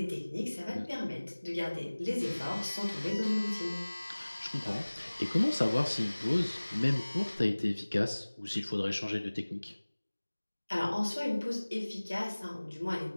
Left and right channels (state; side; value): inverted; both; correlation -1.00